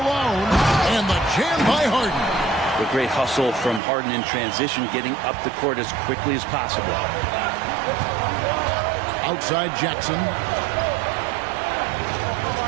And the jam by Harden. The great hustle from Harden in transition, getting up the court as quickly as possible. Outside Jackson.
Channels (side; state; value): left; drops out; at 3.8 s